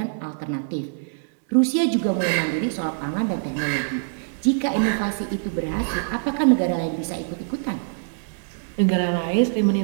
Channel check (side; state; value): left; silent; digital silence